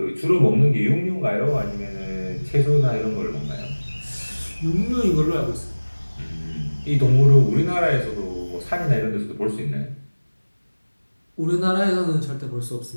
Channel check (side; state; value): both; inverted; correlation -1.00